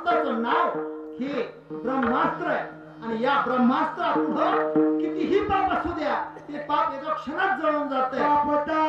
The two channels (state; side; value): identical; both; correlation 1.00